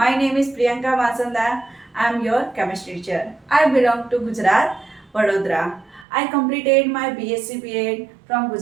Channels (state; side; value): drops out; left; at 6.1 s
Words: name is Priyanka Vasanda. I am your chemistry teacher. I belong to Gujarat, Vadodara. I completed my BSc B.Ed from